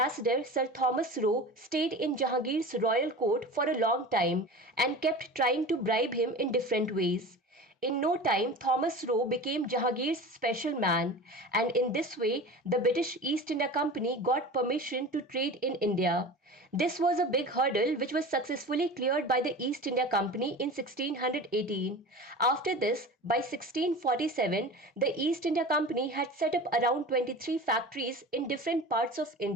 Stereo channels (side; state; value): both; normal; correlation 0.34